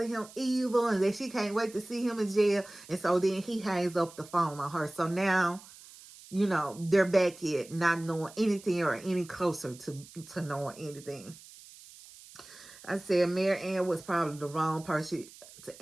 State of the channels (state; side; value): noise; right; hiss, 20 dB below the sound